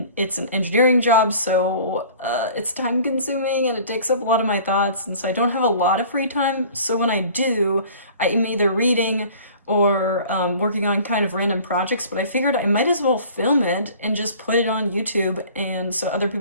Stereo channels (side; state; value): both; inverted; correlation -0.47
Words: an engineering job, so it's time consuming and it takes up a lot of my thoughts, and so I don't have a lot of free time. So when I do, I'm either reading or working on kind of random projects, but I figured I might as well film it and just put it on YouTube, and so other